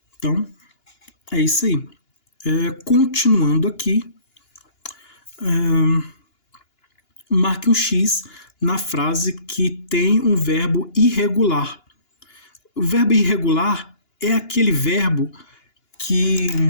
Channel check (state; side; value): late; right; 2.9 ms